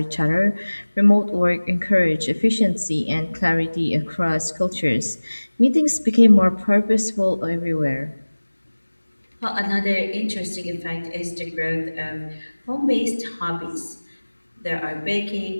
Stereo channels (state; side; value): inverted; both; correlation -1.00